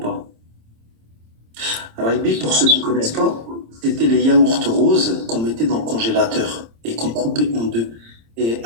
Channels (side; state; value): left; late; 26 ms